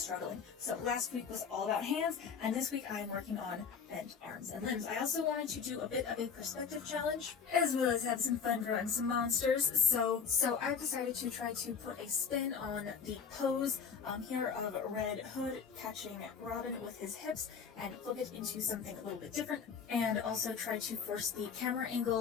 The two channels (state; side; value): quieter; right; 6.4 dB